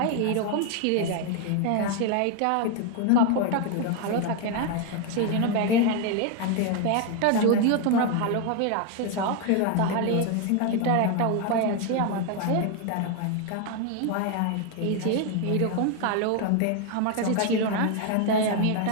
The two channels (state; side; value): different; both; correlation 0.01